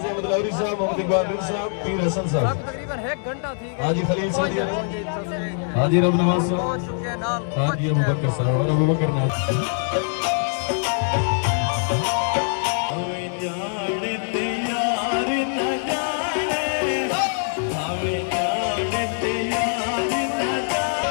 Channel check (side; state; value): right; silent; digital silence